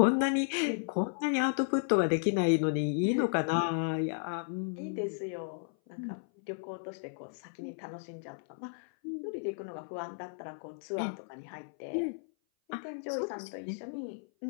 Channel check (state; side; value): silent; right; 55 dB below the other